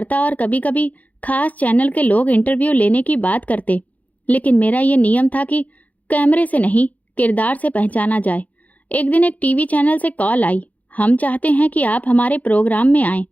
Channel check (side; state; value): right; late; 0.075 ms